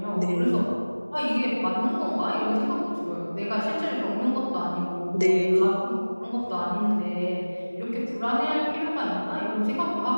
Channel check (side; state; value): both; inverted; correlation -1.00